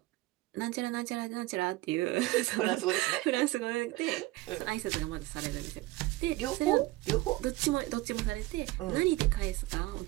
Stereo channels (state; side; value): quieter; left; 18.9 dB